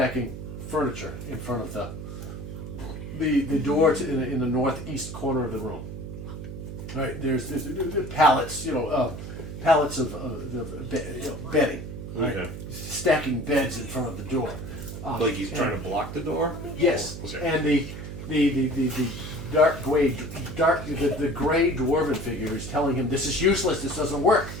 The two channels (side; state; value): right; noise; hum, 9 dB below the sound